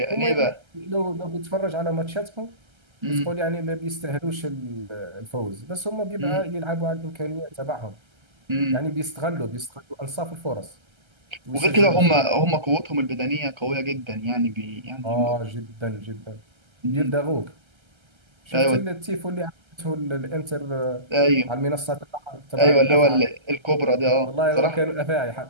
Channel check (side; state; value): left; late; 1.3 ms